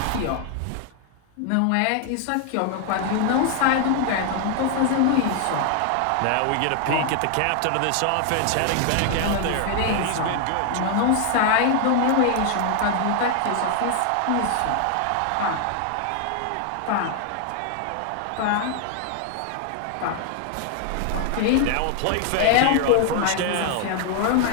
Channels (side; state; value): both; different; correlation 0.00